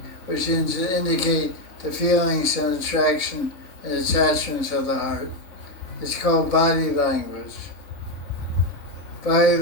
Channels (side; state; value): right; late; 3.6 ms